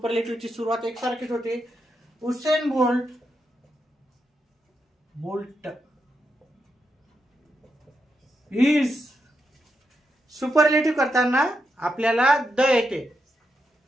सुरुवात एकसारखीच होते. Usain Bolt is. सुपरलेटिव्ह करताना आपल्याला द येते.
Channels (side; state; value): both; normal; correlation 0.84